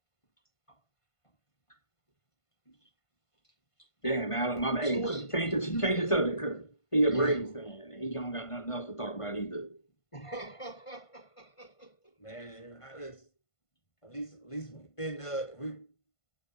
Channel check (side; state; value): right; late; 1.5 ms